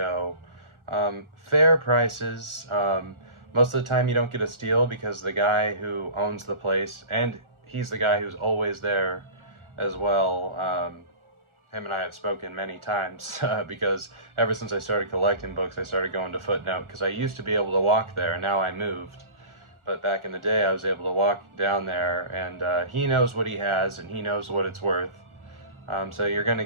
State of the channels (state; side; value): late; left; 1.4 ms